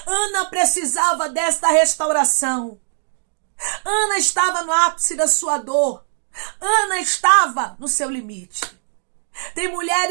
Ana precisava desta restauração. Ana estava no ápice da sua dor. Ana estava no seu limite. Tem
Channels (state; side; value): silent; left; digital silence